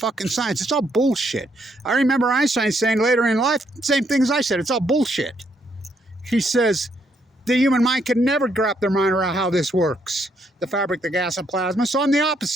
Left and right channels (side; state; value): both; normal; correlation 0.73